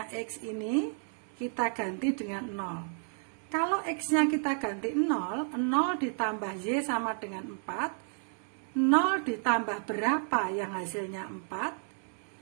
X ini kita ganti dengan 0. Kalau X-nya kita ganti 0, 0 ditambah Y sama dengan 4. 0 ditambah berapa yang hasilnya 4?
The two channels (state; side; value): silent; left; 57 dB below the other